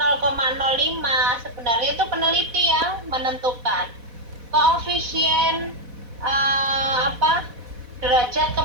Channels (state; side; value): late; left; 4.1 ms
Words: Sebenarnya itu peneliti yang menentukan. Koefisien derajat